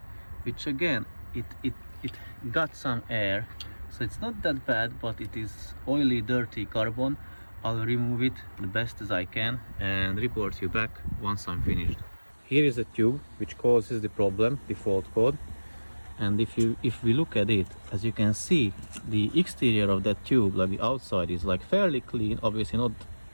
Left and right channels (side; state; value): both; inverted; correlation -1.00